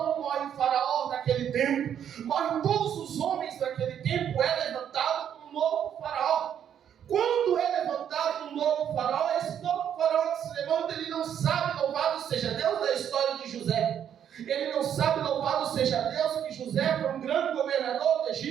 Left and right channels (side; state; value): left; quieter; 9.2 dB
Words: morre o faraó naquele tempo, morrem todos os homens daquele tempo, é levantado um novo faraó. Quando é levantado um novo faraó, esse novo faraó que se levanta, ele não sabe, louvado seja Deus, da história de José. Ele não sabe, louvado seja Deus, que José foi um grande governador do